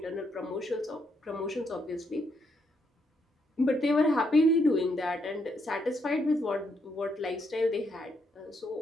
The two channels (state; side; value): normal; both; correlation 0.76